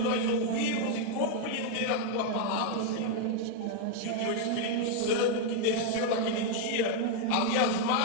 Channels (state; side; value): different; both; correlation 0.00